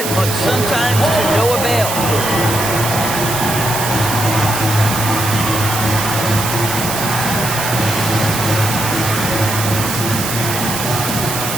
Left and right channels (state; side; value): noise; right; hiss, 4 dB below the sound